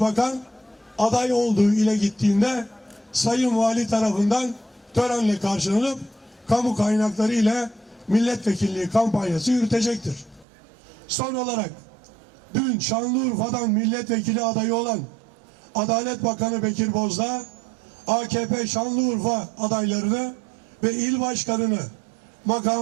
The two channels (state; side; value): drops out; left; at 10.5 s